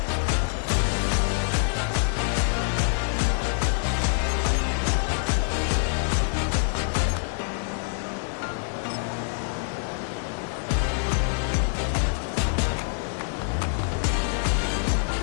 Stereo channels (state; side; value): silent; right; digital silence